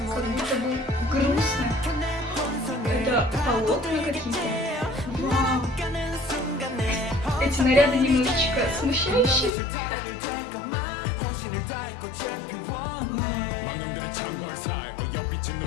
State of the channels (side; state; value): right; drops out; at 9.5 s